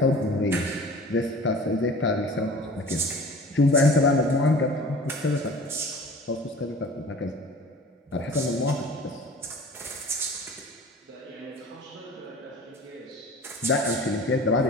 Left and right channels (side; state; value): both; normal; correlation 0.42